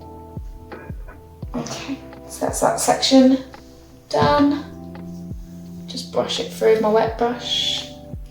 Okay, so that's that section done. Just brush it through with my wet brush.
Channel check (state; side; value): identical; both; correlation 1.00